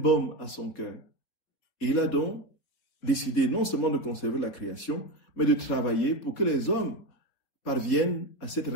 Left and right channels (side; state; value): right; late; 4.3 ms